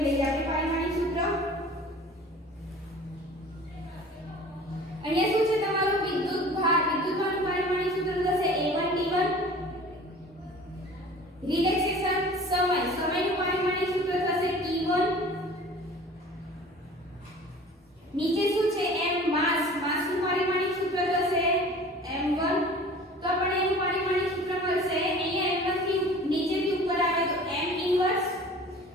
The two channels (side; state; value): both; normal; correlation 0.44